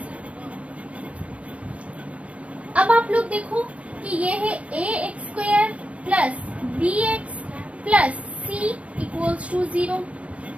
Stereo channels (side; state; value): left; late; 0.065 ms